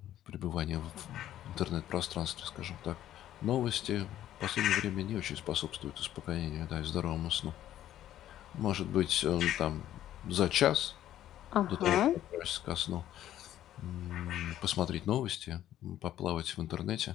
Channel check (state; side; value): quieter; right; 12.2 dB